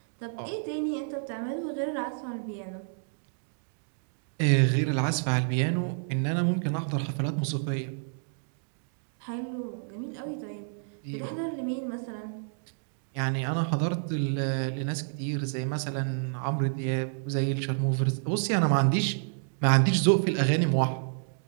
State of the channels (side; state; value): left; silent; digital silence